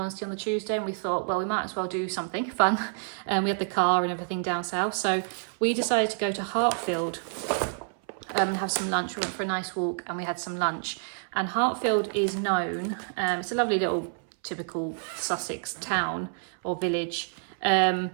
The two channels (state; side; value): silent; left; 59 dB below the other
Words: on the Tuesday, and we thought, well, we might as well do something fun. We had the car and everything down south, so we decided to go to Hartfield and have some lunch. We went for a nice walk and we had some lunch. And Hartfield is known, it's a lovely little typical Sussex town or village,